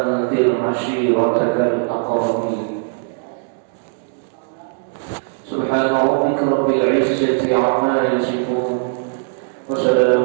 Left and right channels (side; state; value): left; silent; digital silence